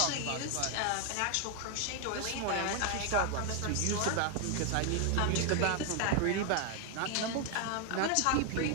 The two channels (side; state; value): both; different; correlation 0.00